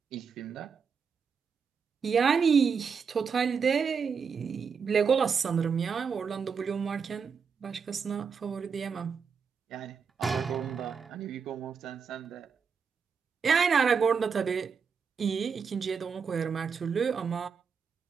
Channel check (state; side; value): quieter; left; 6.0 dB